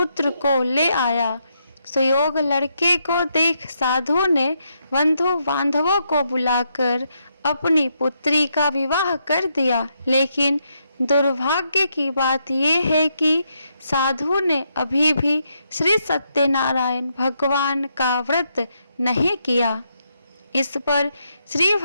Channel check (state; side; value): inverted; both; correlation -0.79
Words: को ले आया। सुयोग लड़के को देख साधु ने बंधु बांधवों को बुलाकर अपनी पुत्री का विवाह कर दिया। लेकिन दुर्भाग्य की बात यह है कि साधु ने अभी भी श्री सत्यनारायण भगवान का व्रत नहीं किया। इस पर श्री